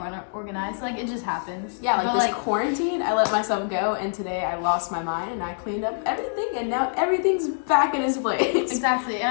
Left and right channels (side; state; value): right; silent; 62 dB below the other